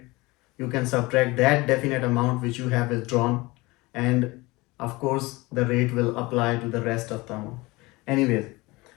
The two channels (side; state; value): right; quieter; 22.5 dB